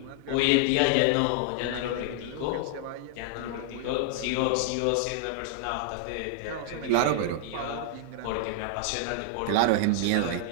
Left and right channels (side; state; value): both; different; correlation -0.01